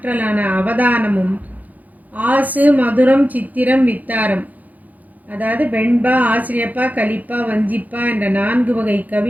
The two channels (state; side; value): late; left; 0.079 ms